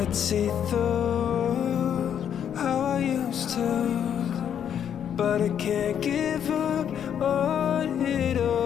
see through how I used to, but I can't give up on it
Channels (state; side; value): quieter; right; 8.9 dB